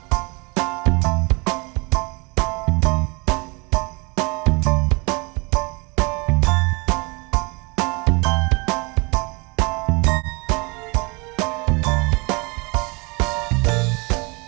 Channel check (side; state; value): left; quieter; 28.6 dB